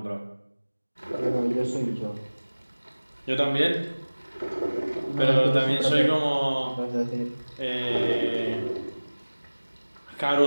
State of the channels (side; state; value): both; inverted; correlation -1.00